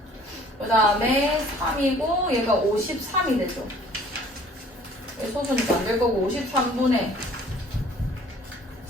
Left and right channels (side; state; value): both; normal; correlation 0.53